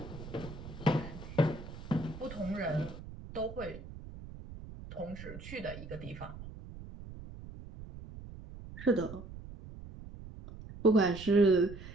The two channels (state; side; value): noise; right; rumble, 13 dB below the sound